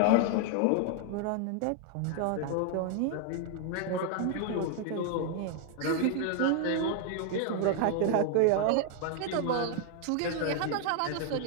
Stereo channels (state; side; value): different; both; correlation 0.00